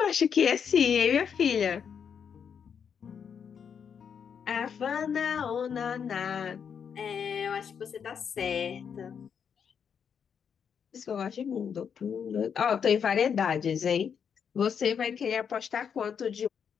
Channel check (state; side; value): quieter; right; 7.2 dB